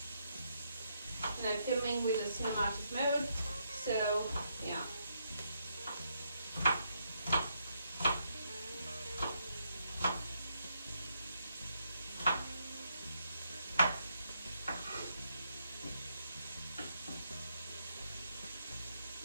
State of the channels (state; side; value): inverted; both; correlation -0.77